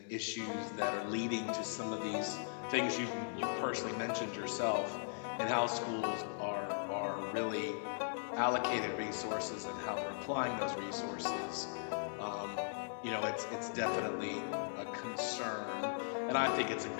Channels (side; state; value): right; silent; digital silence